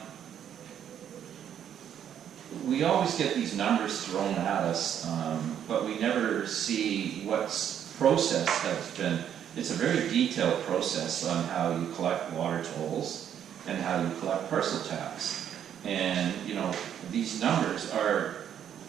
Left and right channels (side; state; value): left; quieter; 9.5 dB